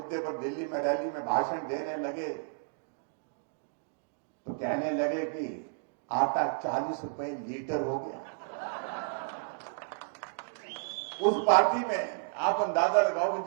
पर दिल्ली में रैली में भाषण देने लगे तो कहने लगे कि आटा 40 रुपए लीटर हो गया। उस पार्टी में आप अंदाजा लगाओ कि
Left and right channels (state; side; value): silent; left; digital silence